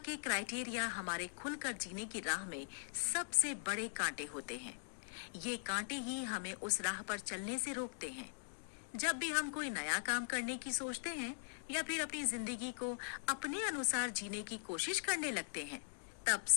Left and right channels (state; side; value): silent; right; digital silence